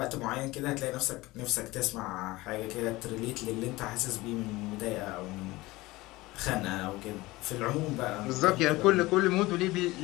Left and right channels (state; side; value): quieter; right; 20.0 dB